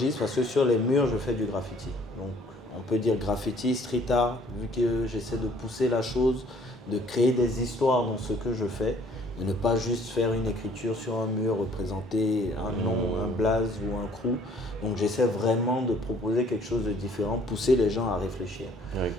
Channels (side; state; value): both; normal; correlation 0.58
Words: parce que sur les murs, je fais du graffiti. Donc, on peut dire graffiti, street art, vu que j'essaie de pousser la chose, de créer des histoires dans ce que je fais. De ne pas juste faire une écriture sur un mur, représenter un nom, un blaze ou un crew. Donc j'essaie vraiment de proposer quelque chose de différent, pousser les gens à réfléchir.